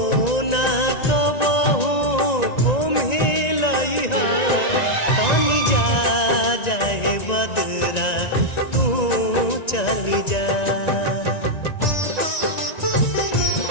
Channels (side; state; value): right; late; 1.9 ms